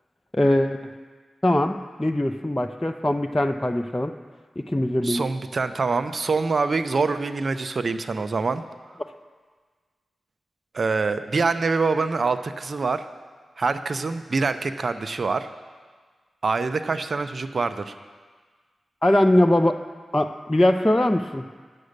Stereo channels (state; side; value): normal; both; correlation 0.94